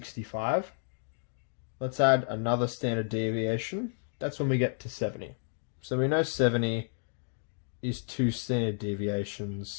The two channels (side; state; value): right; silent; digital silence